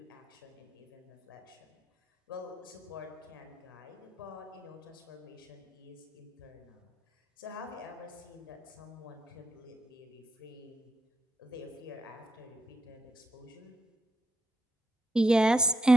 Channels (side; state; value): both; normal; correlation 0.80